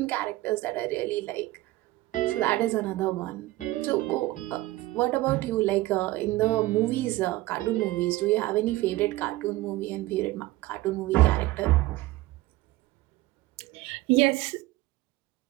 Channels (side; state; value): left; quieter; 18.1 dB